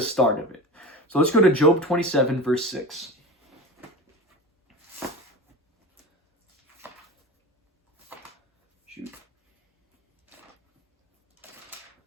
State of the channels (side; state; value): both; normal; correlation 0.30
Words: start of it. So let's go to Job 27, verse 6. Shoot.